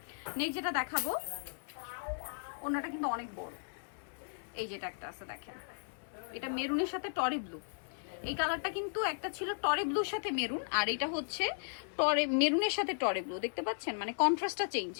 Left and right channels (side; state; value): right; silent; 54 dB below the other